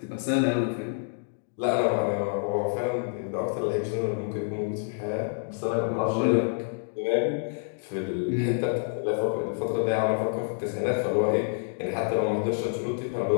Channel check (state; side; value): silent; right; digital silence